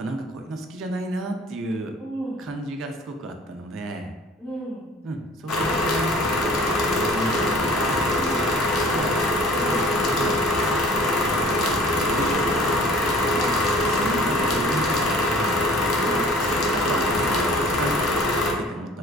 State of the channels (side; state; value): both; normal; correlation 0.48